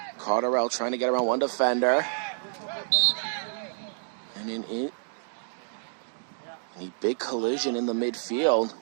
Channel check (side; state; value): left; silent; digital silence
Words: Cotterell trying to get around one defender. And a big collision in the midfield.